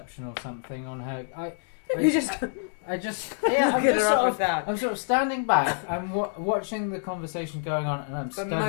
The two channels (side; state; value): right; silent; digital silence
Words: or something on her? You just yeah, I'm get just her sort up of with that. I'm sort of standing back. I'm watching the conversation going on, and I'm But studying